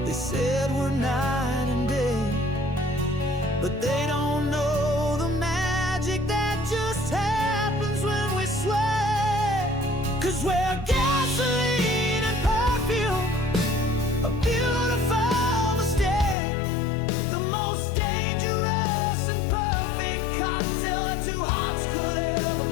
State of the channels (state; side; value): drops out; right; at 16.4 s